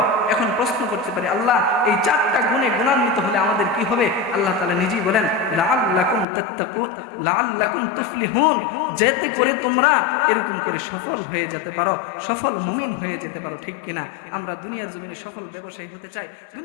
এখন প্রশ্ন করতে পারি, আল্লাহ এই 4টা গুণে গুণান্বিত হলে আমাদের কি হবে? আল্লাহ তাআলা নিজেই বলেন, লাআল্লাকুম তাত্তাকুন, লাআল্লাকুম তুফলিহুন, যাতে করে তোমরা এরকম করে সফল হয়ে যেতে পারো, সফল মুমিন হয়ে যেতে পারো, ঠিক কিনা? আমরা দুনিয়ার জমিনে সফল ব্যবসায়ী হতে চাই,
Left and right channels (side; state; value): right; drops out; at 6.2 s